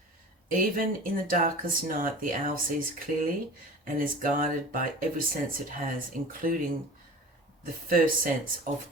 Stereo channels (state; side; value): normal; both; correlation 0.38